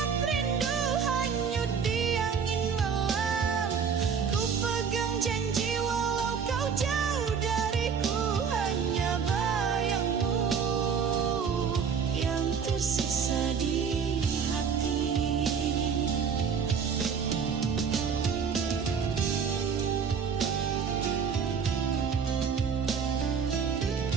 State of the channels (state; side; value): quieter; left; 6.4 dB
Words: rindu hanyut di angin malam. Ku pegang janji walau kau jauh dariku, hanya bayangmu yang tersisa di hati.